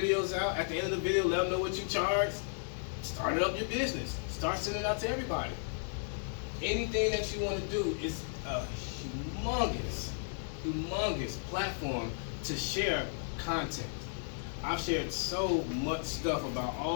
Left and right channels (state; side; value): silent; right; 55 dB below the other